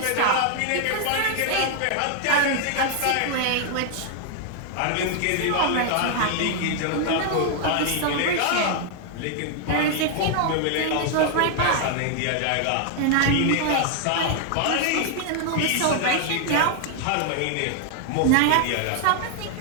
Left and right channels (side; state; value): both; different; correlation 0.00